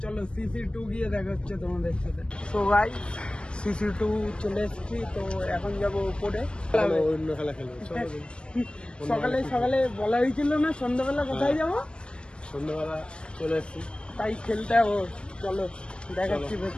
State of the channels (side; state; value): right; late; 0.056 ms